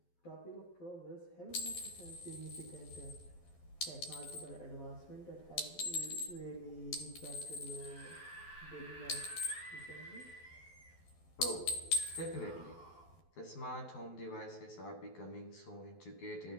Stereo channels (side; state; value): right; late; 12 ms